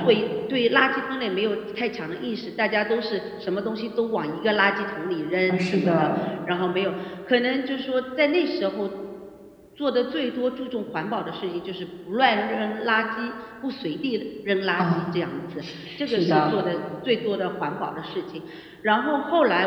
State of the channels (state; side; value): identical; both; correlation 1.00